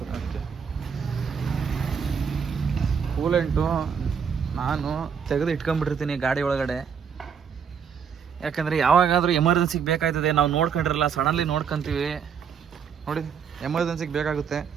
ಕೂಲೆಂಟು ನಾನು ತೆಗೆದು ಇಟ್ಕೊಂಡ್ಬಿಟ್ಟಿರ್ತೀನಿ ಗಾಡಿ ಒಳಗಡೆ. ಯಾಕಂದರೆ ಯಾವಾಗಾದರೂ ಎಮರ್ಜೆನ್ಸಿಗೆ ಬೇಕಾಯ್ತದೆ, ನಾವು ನೋಡ್ಕೊಂಡಿರಲ್ಲ, ಸಡನ್ಲಿ ನೋಡ್ಕೊಂತೀವಿ ನೋಡಿ, ಎಮರ್ಜೆನ್ಸಿಗೆ ಬೇಕಾಗುತ್ತೆ.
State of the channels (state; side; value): quieter; left; 7.0 dB